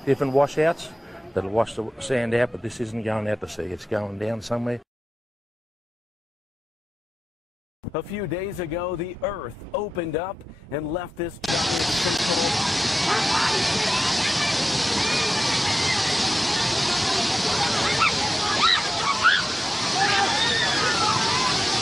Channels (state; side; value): normal; both; correlation 0.93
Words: different washouts that'll wash the sand out, but this isn't going out to sea, it's going down somewhere. A few days ago, the earth opened up and left this giant sinkhole.